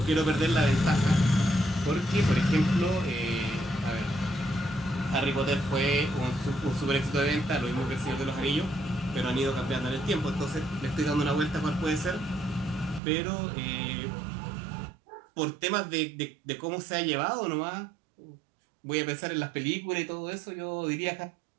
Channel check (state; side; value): drops out; left; at 13.0 s